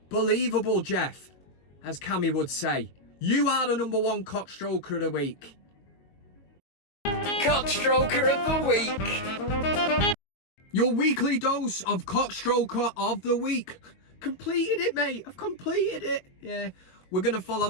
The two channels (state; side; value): late; right; 22 ms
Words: Jeff, as Cammy would say. You are the number one cockstroker of the week. CockStroker of the week. Your weekly dose of cockstroker of the week. Completed it, mate. I've completed it. Yeah. We're going to follow